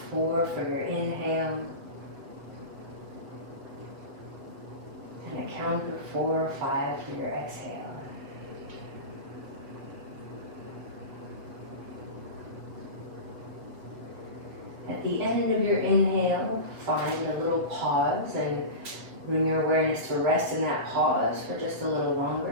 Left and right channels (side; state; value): left; late; 7.5 ms